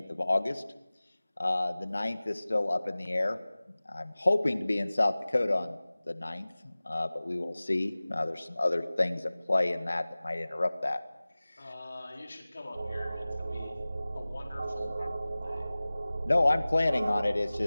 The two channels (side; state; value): both; inverted; correlation -0.98